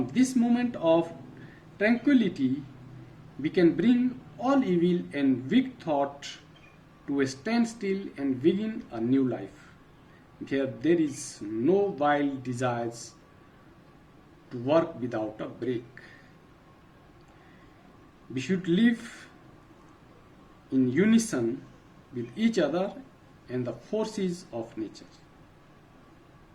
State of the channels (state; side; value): identical; both; correlation 1.00